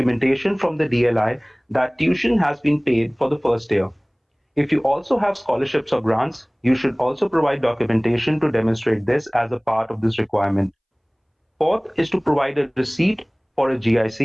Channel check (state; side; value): identical; both; correlation 1.00